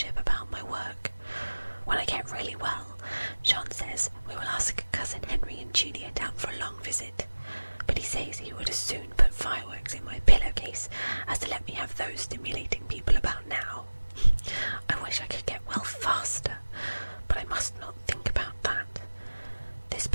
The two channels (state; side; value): inverted; both; correlation -1.00